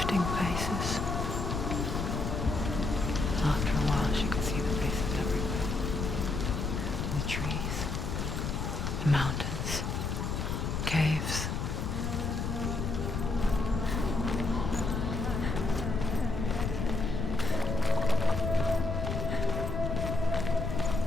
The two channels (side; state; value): left; noise; rumble, 2 dB below the sound